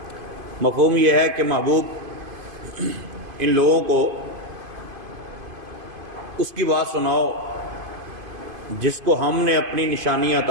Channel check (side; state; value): left; late; 2.5 ms